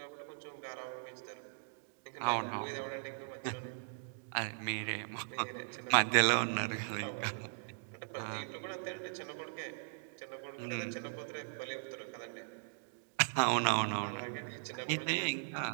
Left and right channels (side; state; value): left; silent; digital silence